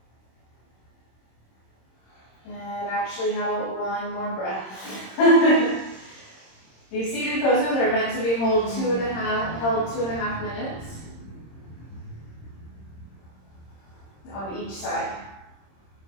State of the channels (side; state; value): right; late; 26 ms